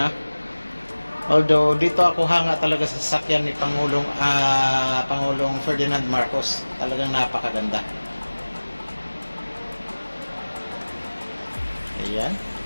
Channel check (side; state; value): both; inverted; correlation -1.00